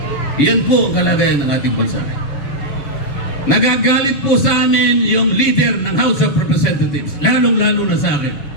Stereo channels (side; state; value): right; late; 7.1 ms